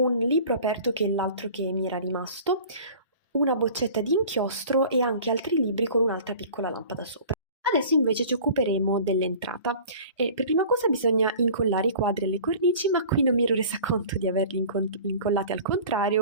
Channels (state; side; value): inverted; both; correlation -0.43